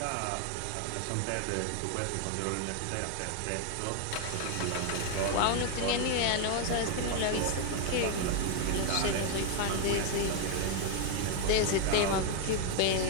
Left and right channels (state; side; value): different; both; correlation 0.01